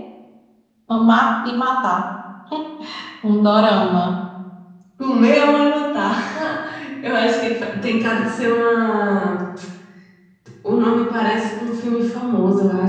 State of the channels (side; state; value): both; identical; correlation 1.00